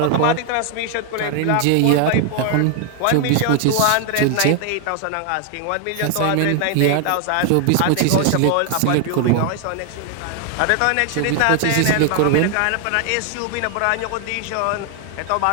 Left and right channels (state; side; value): different; both; correlation 0.00